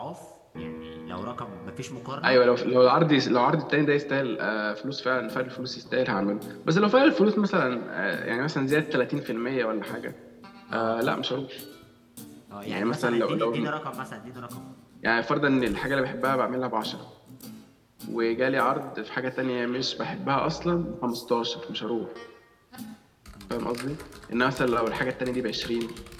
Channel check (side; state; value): both; identical; correlation 1.00